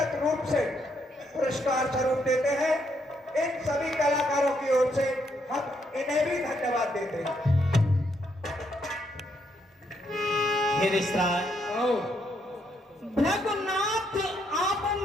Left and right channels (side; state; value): both; normal; correlation 0.75